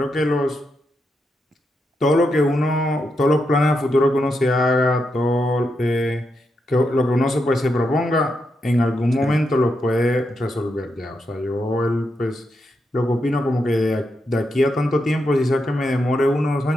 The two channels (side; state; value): both; normal; correlation 0.84